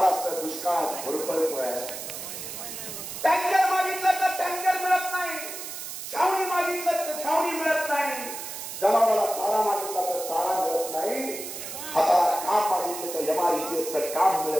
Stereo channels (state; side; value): noise; right; hiss, 8 dB below the sound